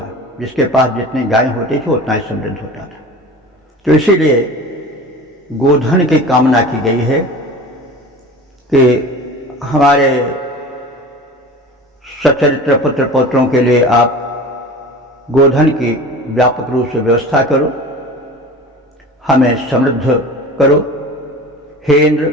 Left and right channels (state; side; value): normal; both; correlation 0.36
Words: जिसके पास जितनी गाय होती थी उतना ही समृद्ध होता था। तो इसीलिए गोधन की कामना की गई है कि हमारे सच्चरित्र पुत्र पौत्रों के लिए आप गोधन की व्यापक रूप से व्यवस्था करो, हमें समृद्ध करो। हे